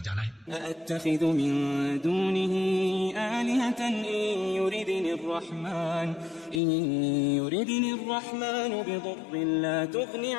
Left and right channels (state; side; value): drops out; right; at 6.6 s